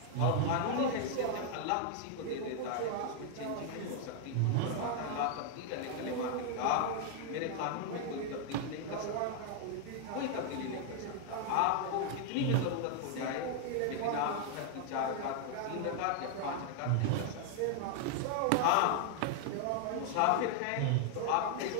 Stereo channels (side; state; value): both; different; correlation 0.00